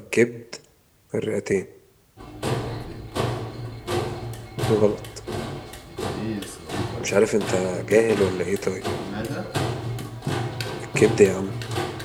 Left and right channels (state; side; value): identical; both; correlation 1.00